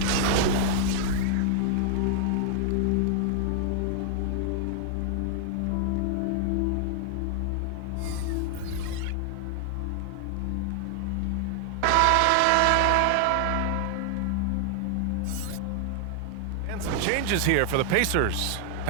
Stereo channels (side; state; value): both; different; correlation 0.00